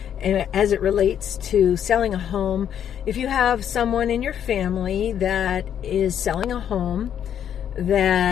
and as it relates to selling a home. If you have someone in your family that is selling a home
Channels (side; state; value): right; quieter; 9.3 dB